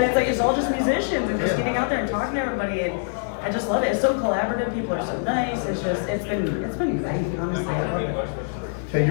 it's like it's all just musicians and just getting out there and talking to everybody, and I just love it. It's so collaborative. People are so nice. It's been great. Honestly, I love it. Kay,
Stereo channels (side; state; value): right; silent; digital silence